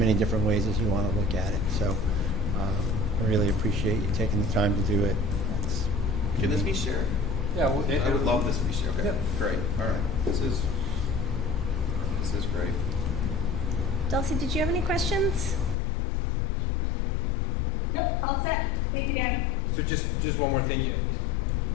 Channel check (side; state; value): right; drops out; at 15.8 s